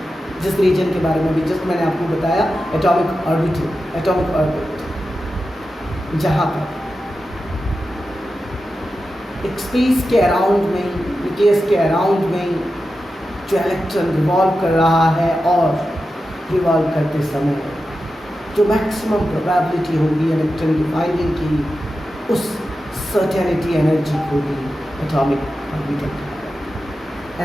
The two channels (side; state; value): both; normal; correlation 0.91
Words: जिस रीजन के बारे में भी जस्ट मैंने आपको बताया, एटॉमिक ऑर्बिट, जहाँ पर एक स्पेस के अराउंड में, न्यूक्लियस के अराउंड में जो इलेक्ट्रॉन रिवॉल्व कर रहा है और रिवॉल्व करते समय जो मैक्सिमम प्रोबेबिलिटी होगी इलेक्ट्रॉन की फाइंडिंग की, उस सर्टेनिटी एनर्जी को भी atomic orbital.